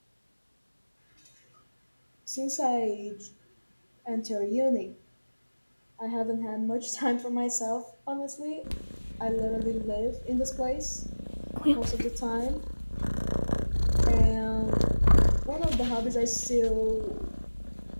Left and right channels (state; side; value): inverted; both; correlation -1.00